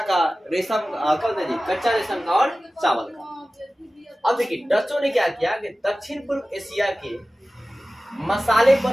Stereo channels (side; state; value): both; normal; correlation 0.96